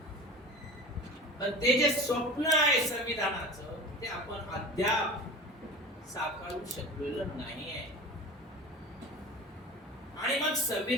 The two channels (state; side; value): normal; both; correlation 0.34